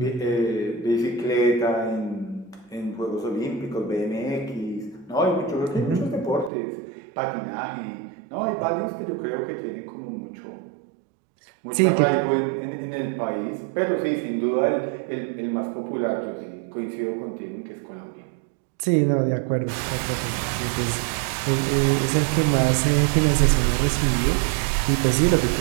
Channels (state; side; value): drops out; left; at 6.5 s